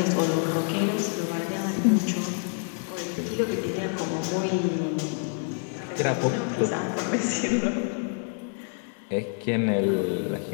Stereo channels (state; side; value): silent; right; 58 dB below the other